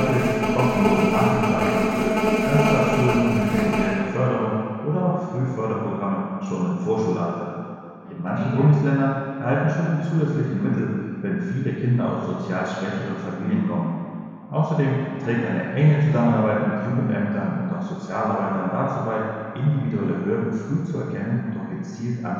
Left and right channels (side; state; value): both; identical; correlation 1.00